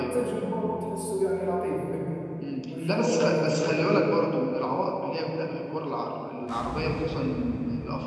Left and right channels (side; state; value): both; identical; correlation 1.00